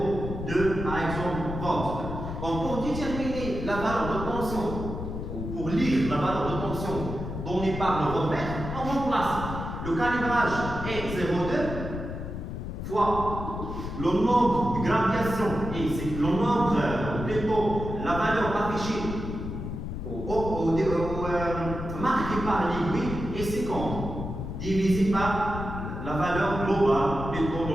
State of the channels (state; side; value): noise; left; rumble, 6 dB below the sound